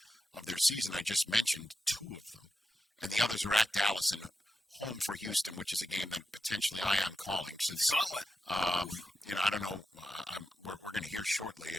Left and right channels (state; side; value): normal; both; correlation 0.88